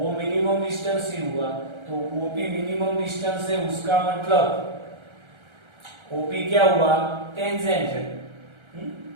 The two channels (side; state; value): left; late; 1.3 ms